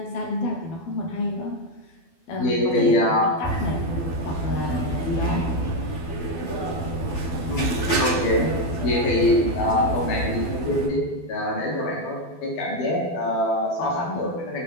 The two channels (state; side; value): late; right; 12 ms